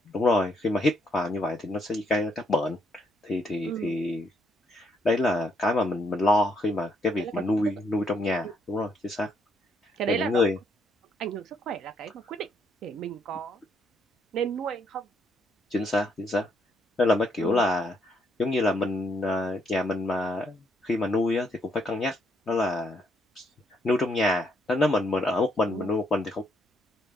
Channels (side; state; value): both; normal; correlation 0.73